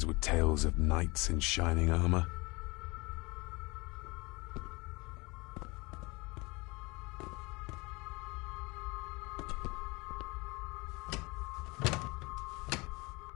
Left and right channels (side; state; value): right; quieter; 25.2 dB